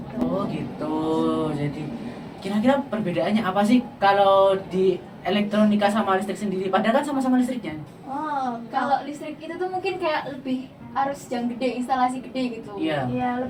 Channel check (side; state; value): both; identical; correlation 1.00